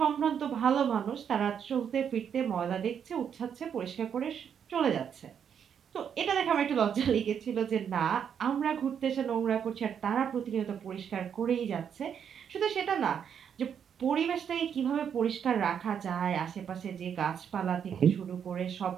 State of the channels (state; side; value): quieter; left; 8.0 dB